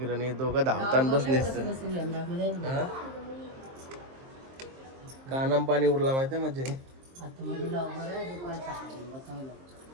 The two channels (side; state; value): left; late; 23 ms